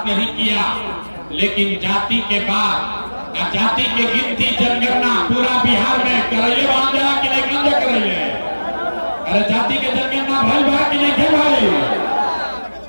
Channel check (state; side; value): inverted; both; correlation -1.00